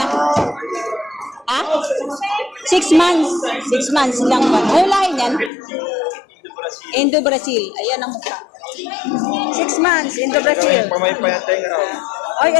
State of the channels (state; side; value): drops out; right; at 5.5 s